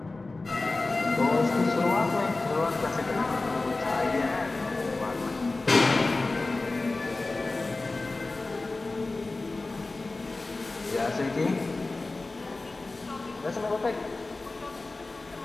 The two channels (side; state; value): right; quieter; 3.3 dB